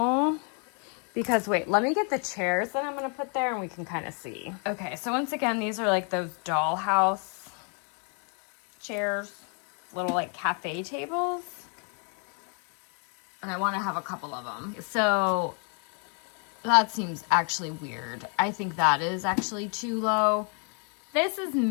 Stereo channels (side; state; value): right; quieter; 39.5 dB